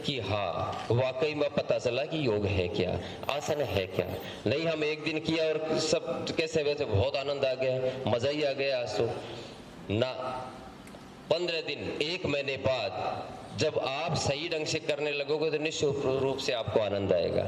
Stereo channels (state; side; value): identical; both; correlation 1.00